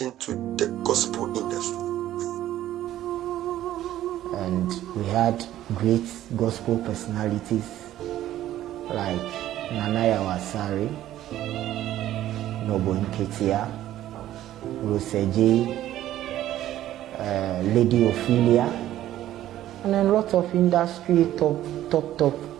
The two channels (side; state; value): left; quieter; 13.2 dB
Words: to the gospel industry. And we had great gospel personalities like Nanaya Wasari, Nobo Nketia, Roseji, Lady Ophelia, and a lot of industry top